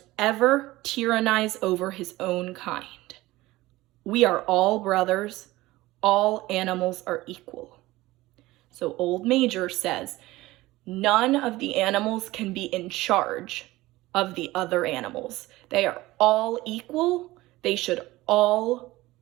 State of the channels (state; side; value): quieter; left; 18.4 dB